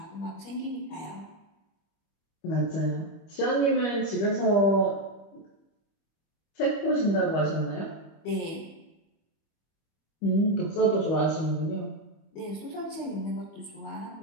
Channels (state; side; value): late; right; 25 ms